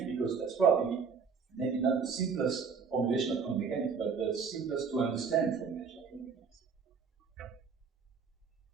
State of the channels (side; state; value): left; quieter; 5.7 dB